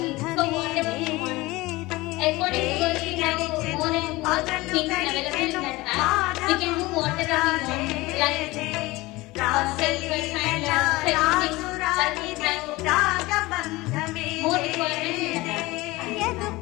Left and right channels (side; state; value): right; quieter; 20.7 dB